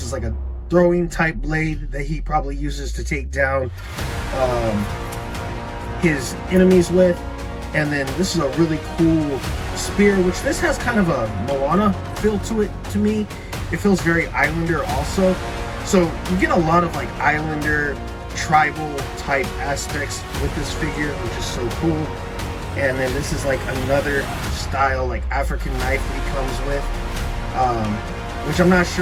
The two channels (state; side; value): identical; both; correlation 1.00